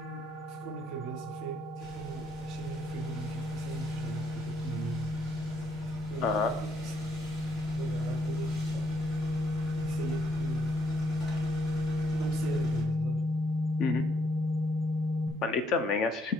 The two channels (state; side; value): normal; both; correlation 0.72